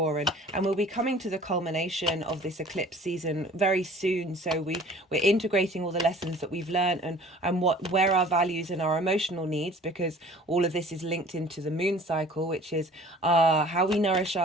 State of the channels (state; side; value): normal; both; correlation 0.48